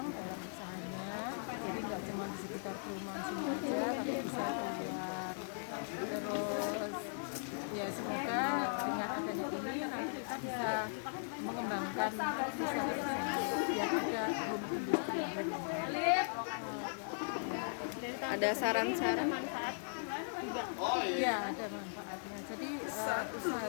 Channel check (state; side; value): silent; right; 52 dB below the other